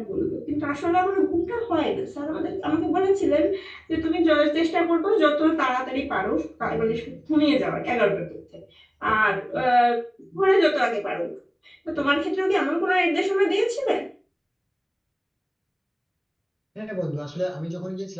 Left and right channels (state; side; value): identical; both; correlation 1.00